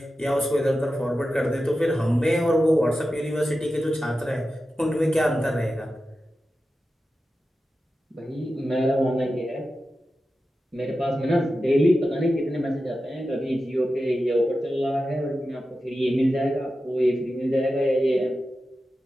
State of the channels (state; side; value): normal; both; correlation 0.92